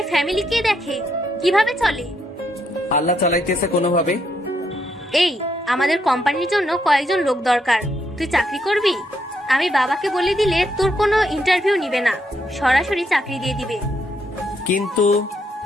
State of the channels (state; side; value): normal; both; correlation 0.76